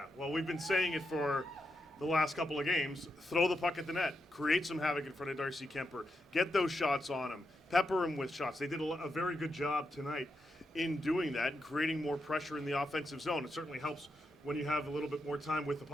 well, we've been saying it for the last couple of games. Throw the puck at the net. Create some havoc in front of Darcy Kuemper. Get those shots on him. Pepper him with shots. They did a very good job tonight in doing that and creating more pressure in the offensive zone. It certainly helps when you have a little bit more time with the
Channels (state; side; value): normal; both; correlation 0.85